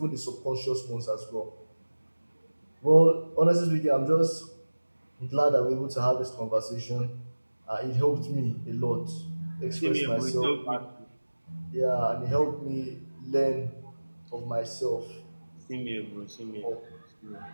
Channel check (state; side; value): inverted; both; correlation -1.00